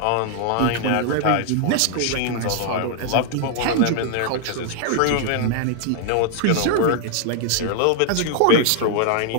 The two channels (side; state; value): both; different; correlation 0.00